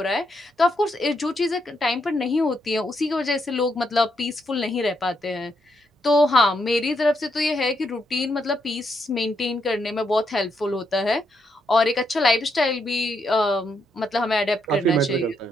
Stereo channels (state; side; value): normal; both; correlation 0.78